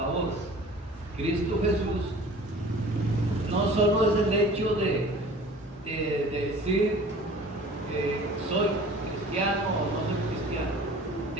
Cristo Jesús, no solo es el hecho de decir que soy cristiano o no soy cristiano,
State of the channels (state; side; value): normal; both; correlation 0.45